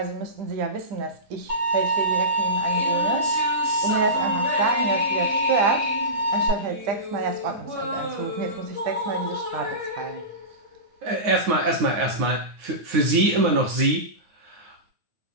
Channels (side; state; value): left; late; 9.5 ms